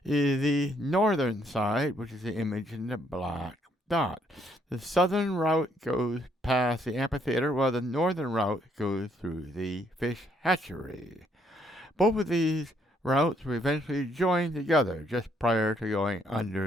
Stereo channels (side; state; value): both; normal; correlation 0.70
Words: is the northern side, which is the image in the black dot. The southern route goes past the amphitheater, while the northern route goes through the fish hatchery. Both of these routes will eventually join together just prior to going